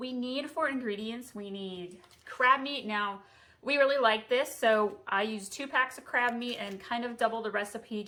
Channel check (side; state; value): both; identical; correlation 1.00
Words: need for ingredients, we need crab meat. Now, we really like this, so I use 2 packs of crab meat and kind of double the recipe